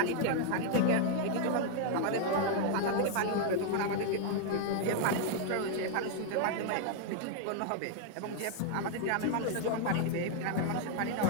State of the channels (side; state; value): both; different; correlation 0.00